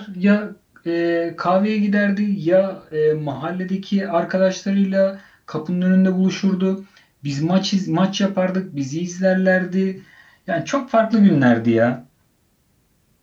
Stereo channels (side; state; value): both; identical; correlation 1.00